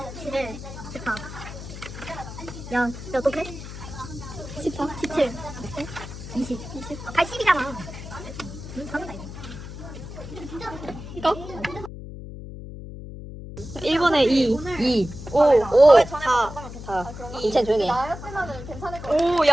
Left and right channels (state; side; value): noise; left; hum, 11 dB below the sound